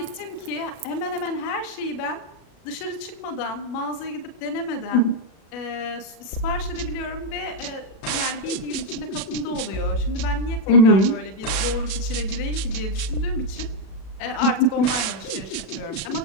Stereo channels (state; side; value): late; right; 36 ms